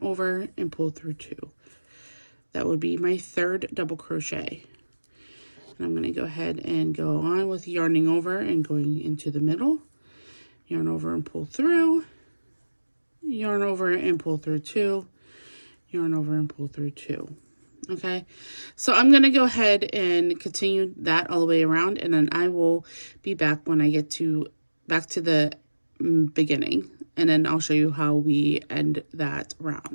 over and pull through 2. That would be my third double crochet. And I'm going to go ahead and go on with yarning over and going into the middle. Yarn over and pull through. Yarn over and pull through 2. Yarn over and pull through 2. Okay, so I'm going to go ahead and continue that all the way around, and then I will be back when I get back to the beginning, and then I'll show you how we end that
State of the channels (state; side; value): inverted; both; correlation -1.00